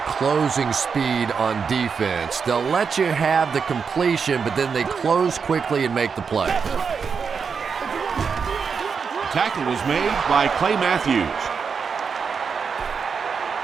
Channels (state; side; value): quieter; left; 5.9 dB